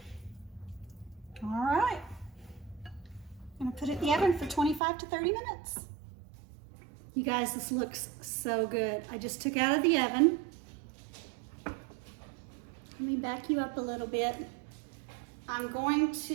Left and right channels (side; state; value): left; drops out; at 4.8 s